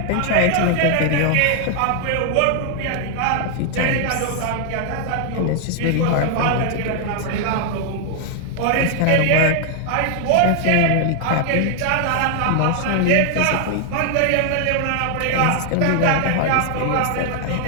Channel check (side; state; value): both; different; correlation 0.00